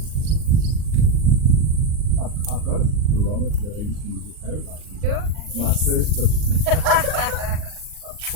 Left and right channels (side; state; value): left; late; 39 ms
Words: I've got a barometer that I used to use with paragliding. Sure. My first, but